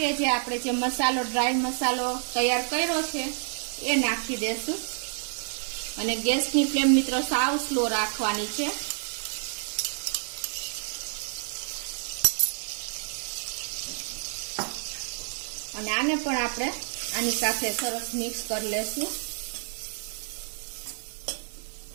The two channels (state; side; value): silent; left; 59 dB below the other